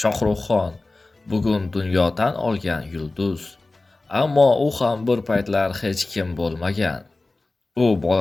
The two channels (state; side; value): quieter; right; 3.2 dB